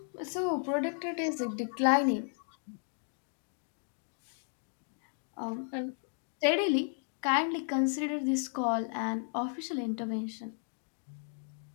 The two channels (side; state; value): right; silent; 55 dB below the other